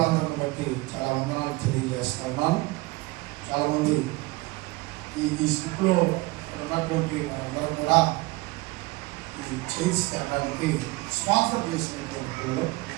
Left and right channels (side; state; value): left; quieter; 22.3 dB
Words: బట్టి చాలా వందనాలు తెలియజేస్తా ఉన్నాను. చాలామంది ఈ స్లిప్లో ఉన్నటువంటి వారందరూ కూడా ఈ చైర్స్ తేడానికి స్పాన్సర్ చేసినటువంటి పిల్లలు